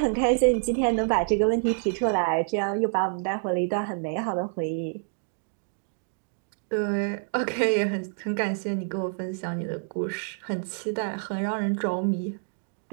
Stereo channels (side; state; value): left; silent; 60 dB below the other